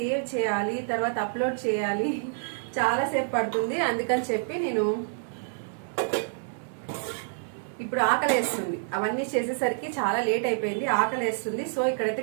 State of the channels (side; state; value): left; silent; 60 dB below the other